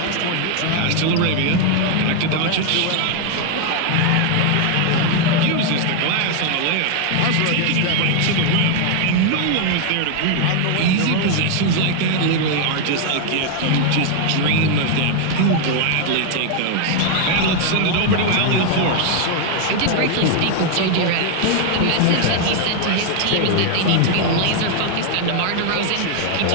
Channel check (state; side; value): different; both; correlation 0.00